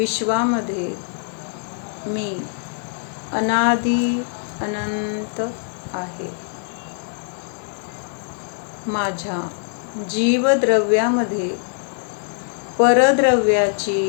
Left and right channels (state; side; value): silent; right; digital silence